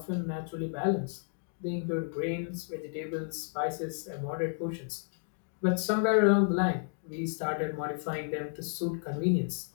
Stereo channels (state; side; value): silent; right; digital silence